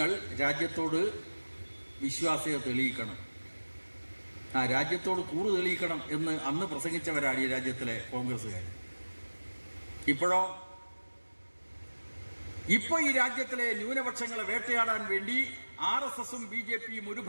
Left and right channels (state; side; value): inverted; both; correlation -1.00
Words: രാജ്യത്തോട് വിശ്വാസ്യത തെളിയിക്കണം, രാജ്യത്തോട് കൂറ് തെളിയിക്കണം എന്ന് അന്ന് പ്രസംഗിച്ചവരാണ് ഈ രാജ്യത്തിലെ കോൺഗ്രസ്സുകാർ. ഇപ്പൊ ഈ രാജ്യത്തിലെ ന്യൂനപക്ഷങ്ങളെ വേട്ടയാടാൻ വേണ്ടി RSSും BJPയും ഒരു